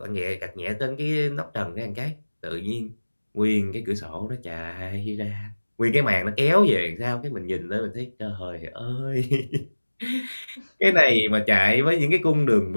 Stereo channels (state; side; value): inverted; both; correlation -1.00